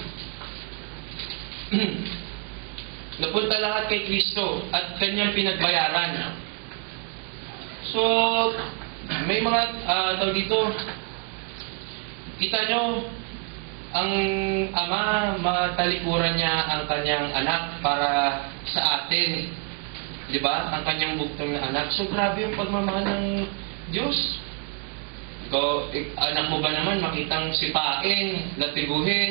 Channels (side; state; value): left; quieter; 36.9 dB